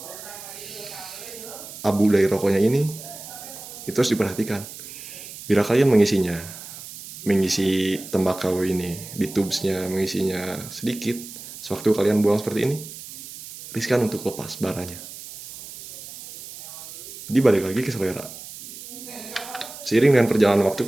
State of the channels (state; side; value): noise; right; hiss, 13 dB below the sound